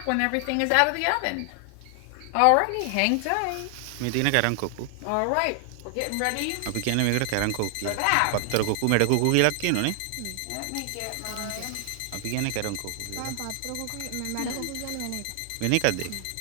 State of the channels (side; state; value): both; different; correlation 0.00